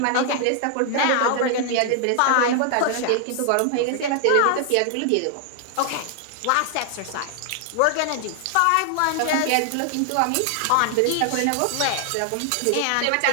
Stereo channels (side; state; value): both; different; correlation 0.00